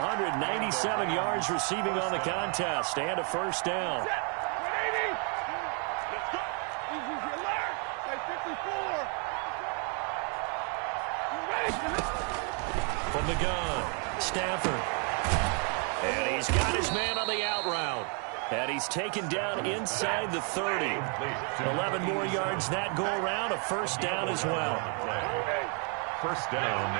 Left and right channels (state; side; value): quieter; left; 38.9 dB